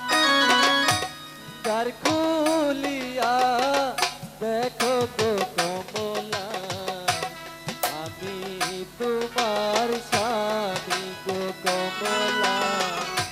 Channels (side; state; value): both; identical; correlation 1.00